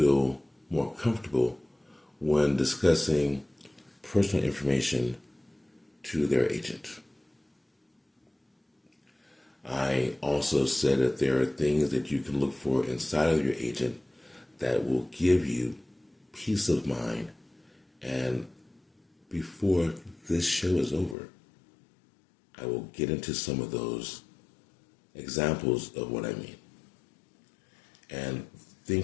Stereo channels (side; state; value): right; drops out; at 21.2 s